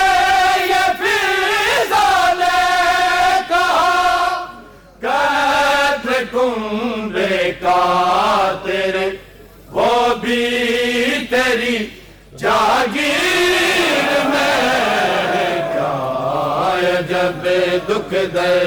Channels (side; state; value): both; identical; correlation 1.00